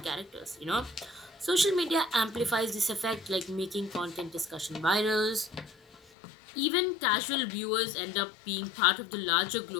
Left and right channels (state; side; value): drops out; right; at 6.0 s